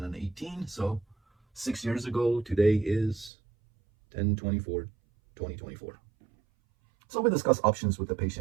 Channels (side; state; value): left; drops out; at 3.3 s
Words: So 6 years ago, today is 10/24/2024. So we discuss options with the